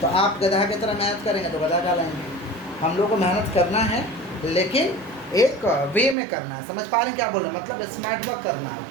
तो आप गधा की तरह मेहनत करेंगे तो गधा कहलाएंगे। हम लोग को मेहनत करना है, लेकिन एक वे में करना है। समझ पा रहे हैं क्या बोल रहे हैं? मतलब स्मार्ट वर्क करना है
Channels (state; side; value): drops out; left; at 6.2 s